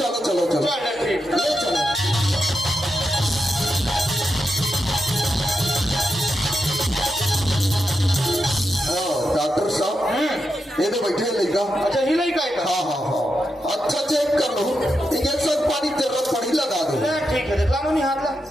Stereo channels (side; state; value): both; normal; correlation 0.86